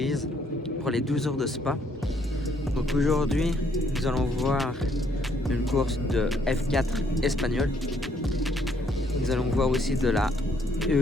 pour les 12 heures de Spa. Donc aujourd'hui nous allons voir une course de F4 espagnol. Nous allons voir aussi de la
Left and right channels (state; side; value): normal; both; correlation 0.68